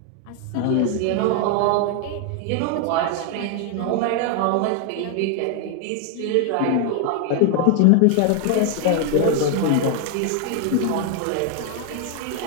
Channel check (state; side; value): different; both; correlation 0.00